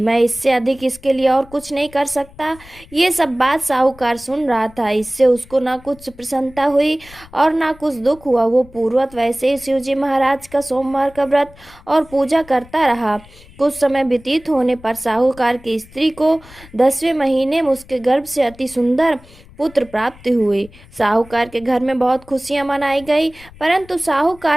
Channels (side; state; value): left; noise; rumble, 23 dB below the sound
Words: इससे अधिक इसके लिए और कुछ नहीं कर सकता। ये सब बात साहूकार सुन रहा था। इससे उसको ना कुछ प्रसन्नता हुई और ना कुछ दुख हुआ। वो पूर्वत वैसे ही शिवजी महाराज का सोमवार का व्रत और पूजा करता रहा। कुछ समय व्यतीत होने पर साहूकार की स्त्री को 10वें महीने में उसके गर्भ से अति सुंदर पुत्र प्राप्त हुई। साहूकार के घर में बहुत खुशियां मनाई गई, परंतु